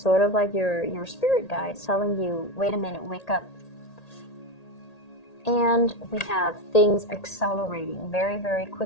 of like your spirit guides telling you, wait a minute, wake up. And we have things accelerating very, very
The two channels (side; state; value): right; late; 1.8 ms